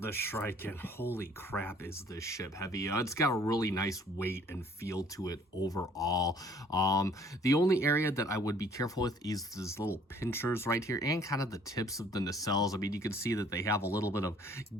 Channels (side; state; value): both; normal; correlation 0.57